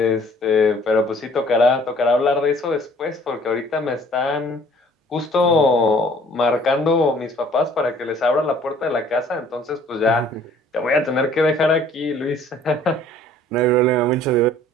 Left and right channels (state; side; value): normal; both; correlation 0.55